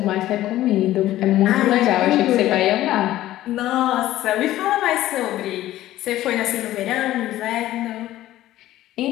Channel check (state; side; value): quieter; right; 14.6 dB